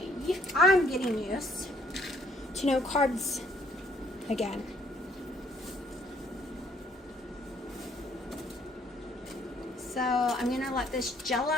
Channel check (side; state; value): both; normal; correlation 0.65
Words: I'm getting used to no carbs again. So I'm going to let this gel